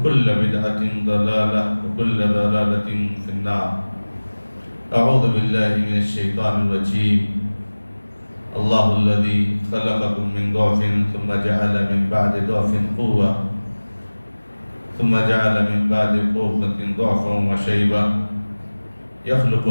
بدعة ضلالة وكل ضلالة في النار أعوذ بالله من الشيطان الرجيم الله الذي خلقكم من ضعف ثم جعل من بعد ضعف قوة ثم جعل من بعد قوة ضعفا وشيبة يخلق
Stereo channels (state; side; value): inverted; both; correlation -1.00